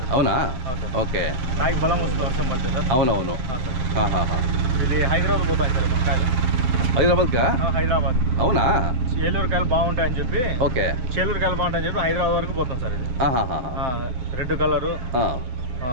అవునా? ఓకే. కాయకి బలం వస్తుంది వర్షం పడితే సార్. అవునవును. ఇది హైదరాబాద్ పోతాయి సార్ మన కాయలు. హైదరాబాద్కా? హైదరాబాద్. అవునా? ఏలూరు కాయలు బాగుంటాయని చెప్పి. ఓకే. చేలూరు కాయలు బాగుంటాయని చెప్పి హైదరాబాద్ వరకు పోతాం సార్. ఇది రెడ్ కలరు,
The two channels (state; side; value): late; left; 7.8 ms